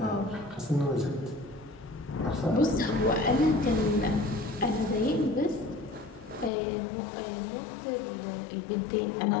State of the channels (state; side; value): drops out; right; at 6.5 s